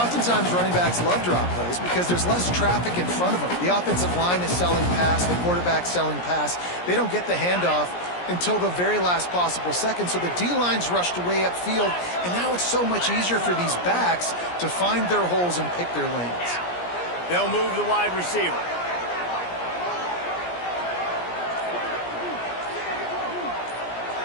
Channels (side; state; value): right; late; 17 ms